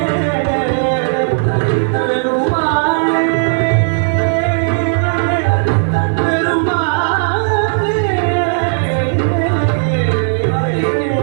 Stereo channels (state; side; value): silent; left; digital silence